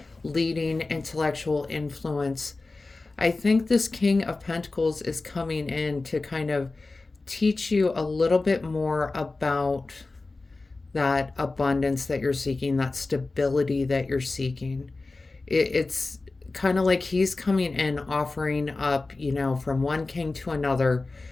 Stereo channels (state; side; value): quieter; right; 3.5 dB